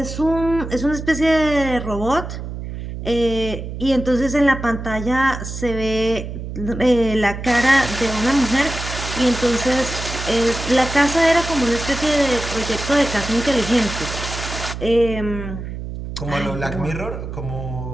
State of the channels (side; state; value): right; noise; hum, 8 dB below the sound